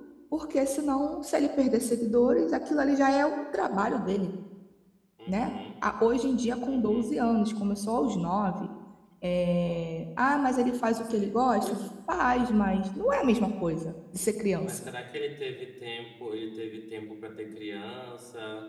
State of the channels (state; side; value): identical; both; correlation 1.00